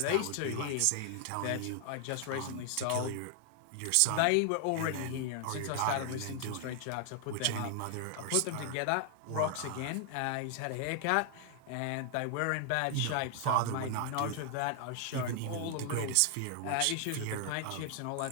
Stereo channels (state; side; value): different; both; correlation 0.00